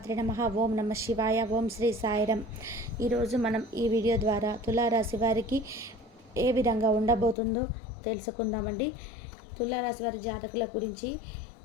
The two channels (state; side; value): drops out; right; at 7.4 s